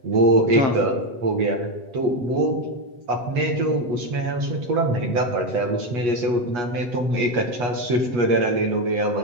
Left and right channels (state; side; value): late; left; 8.3 ms